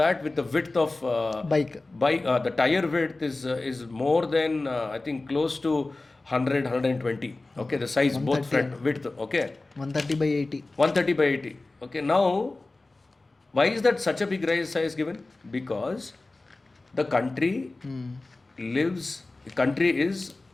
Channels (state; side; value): quieter; right; 3.2 dB